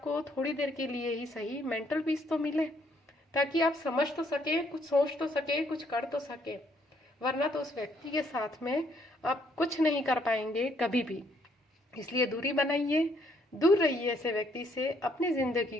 थोड़ी देर के लिए ही सही मेंटल पीस तो मिले, ताकि आप समझ तो सके, कुछ सोच तो सके, कुछ कर तो सके। वरना तो उस व्यक्ति के साथ में आप कुछ नहीं कर पाएंगे कभी भी। इसलिए दूरी बनाइए, दूर रहिए ऐसे व्यक्ति से, अपनी ज़िंदगी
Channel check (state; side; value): normal; both; correlation 0.68